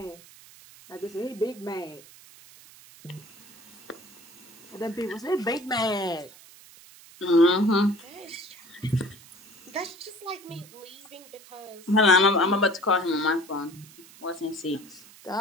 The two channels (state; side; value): noise; right; hiss, 22 dB below the sound